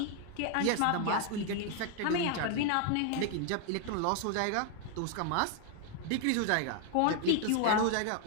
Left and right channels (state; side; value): different; both; correlation 0.00